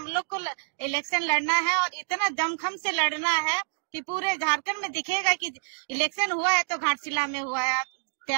लोग को इलेक्शन लड़ना है और इतना दमखम से लड़ना है कि पूरे झारखंड में दिखेगा कि इलेक्शन हुआ है तो घाटशिला में हुआ है।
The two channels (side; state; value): left; silent; digital silence